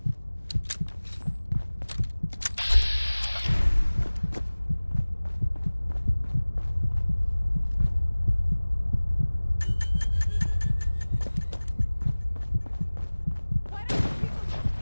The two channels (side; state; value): both; inverted; correlation -1.00